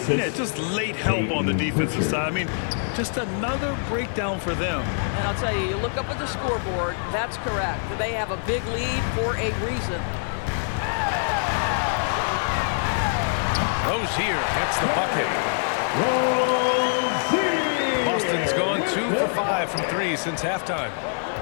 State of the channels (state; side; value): silent; right; 56 dB below the other